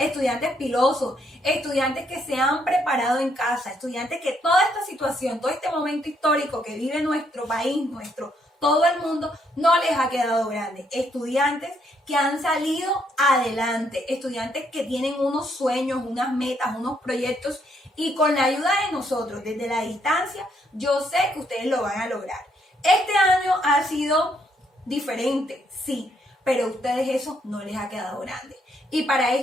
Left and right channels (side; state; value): both; normal; correlation 0.73